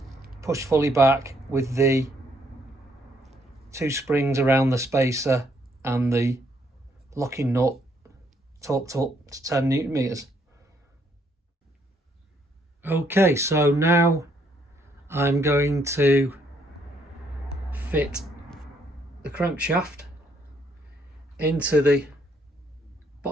pushed fully back with the 2 springs around the spacer and the locking nut torqued up to 10 Newton meters. Okay, so now I'm going to fit the crankshaft into the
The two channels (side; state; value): both; normal; correlation 0.70